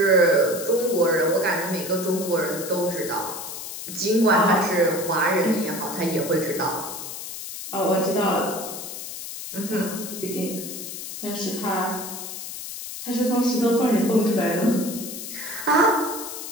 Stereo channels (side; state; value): left; noise; hiss, 9 dB below the sound